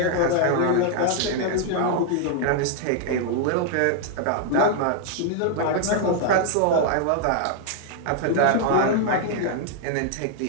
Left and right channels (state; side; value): different; both; correlation 0.00